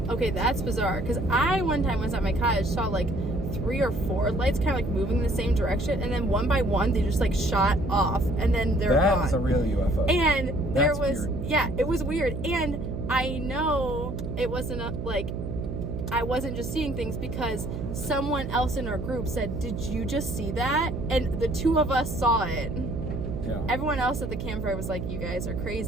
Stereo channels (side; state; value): right; noise; hum, 5 dB below the sound